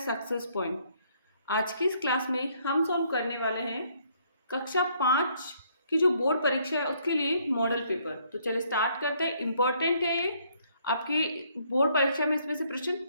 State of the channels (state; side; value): inverted; both; correlation -0.67